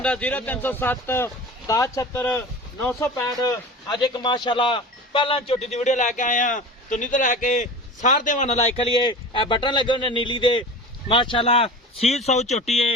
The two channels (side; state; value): both; normal; correlation 0.35